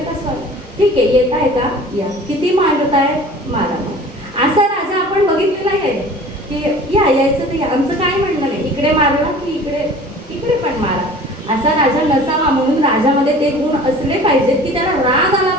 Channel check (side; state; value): both; normal; correlation 0.44